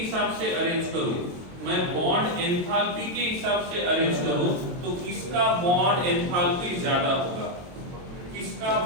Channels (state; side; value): late; left; 22 ms